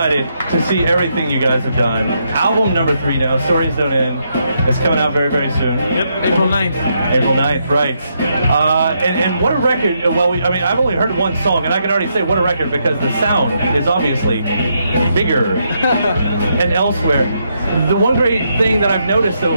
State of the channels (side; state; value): both; inverted; correlation -0.78